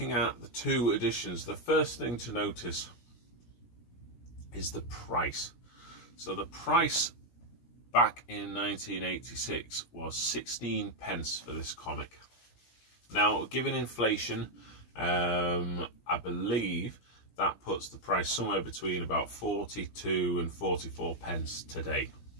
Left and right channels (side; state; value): right; late; 17 ms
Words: at the two editions, the first thing to notice is the price. So the price back in 1986 was 16 pence for this comic. Now, given inflation, I believe that puts the price somewhere between about 42 and 44 pence today.